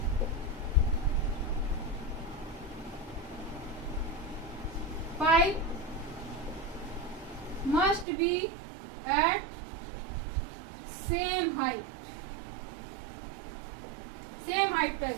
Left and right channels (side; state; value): left; drops out; at 8.1 s